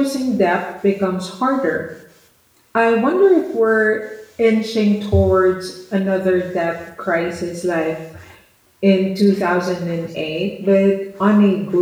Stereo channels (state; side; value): identical; both; correlation 1.00